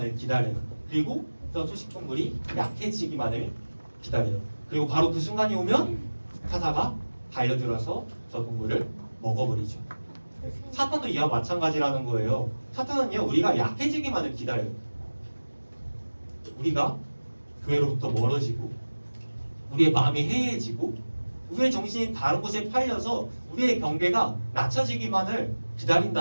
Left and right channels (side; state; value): both; inverted; correlation -1.00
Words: 기다려요. 그리고 저 초식동물이 약해지기만을 기다려요. 그리고 바로 그 순간이 오면 사자가 달려들어서 저 동물을 먹어버리죠. 사탄도 이와 마찬가지라는 거예요. 사탄은요 우리가 약해지기만을 기다려요. 우리가 교회로부터 멀어지고 우리의 마음이 해이해지고 우리의 정신이 다른 곳에 팔려서 우리의 경계가 낮춰지기만을